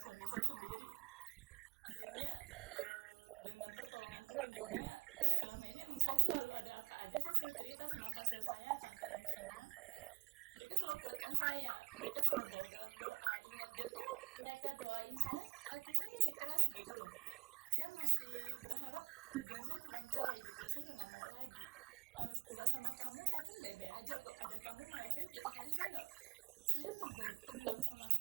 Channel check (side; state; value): left; quieter; 21.4 dB